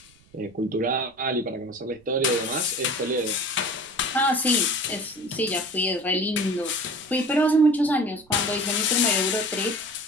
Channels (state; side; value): noise; right; rumble, 29 dB below the sound